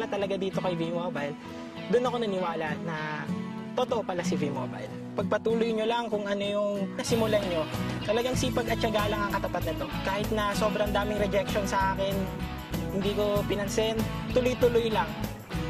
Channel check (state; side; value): identical; both; correlation 1.00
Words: talaga dito kay V-Mobile, doon ako naniwala na totoo pala si V-Mobile. Pagpatuloy nyo lang kung ano yung nasimulan nyo. Talagang sipag at tiyaga lang ang katapat nito. Kahit na sobrang daming rejection sa akin, hindi ko pinansin, tuloy-tuloy lang.